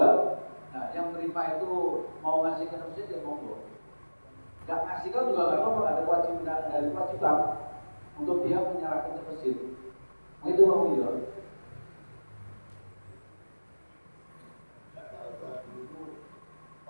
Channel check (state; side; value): inverted; both; correlation -1.00